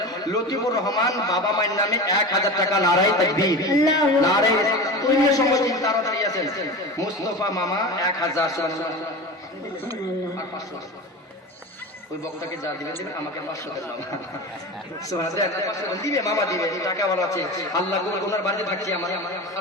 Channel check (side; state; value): both; normal; correlation 0.29